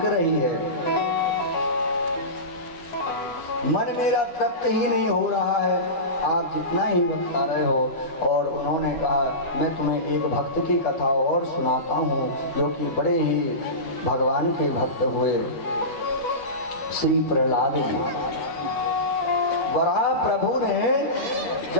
रही है। मन मेरा तृप्त ही नहीं हो रहा है, आप जितना ही बता रहे हो। और उन्होंने कहा मैं तुम्हें एक भक्त की कथा और सुनाता हूँ जो कि बड़े ही भगवान के भक्त हुए। श्री प्रहलाद जी, वराह प्रभु ने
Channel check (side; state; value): right; late; 13 ms